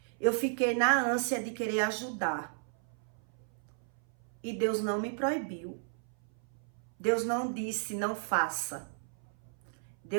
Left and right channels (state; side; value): silent; left; 55 dB below the other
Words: eu fiquei na ânsia de querer ajudar. E Deus não me proibiu. Deus não disse não faça.